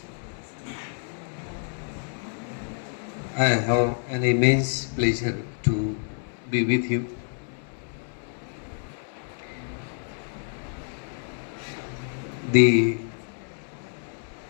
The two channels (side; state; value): right; silent; 57 dB below the other